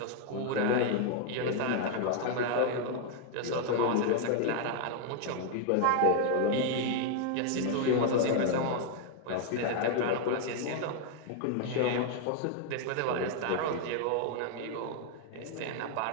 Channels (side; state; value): both; different; correlation 0.00